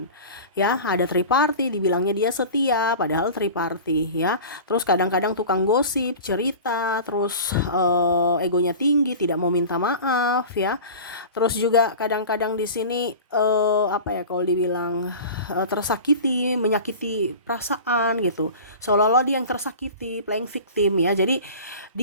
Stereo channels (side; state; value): both; inverted; correlation -0.36